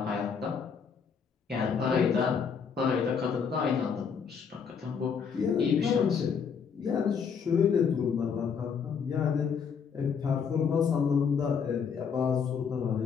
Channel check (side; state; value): right; quieter; 6.5 dB